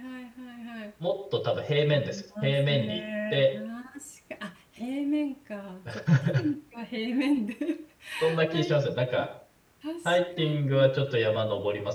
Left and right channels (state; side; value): identical; both; correlation 1.00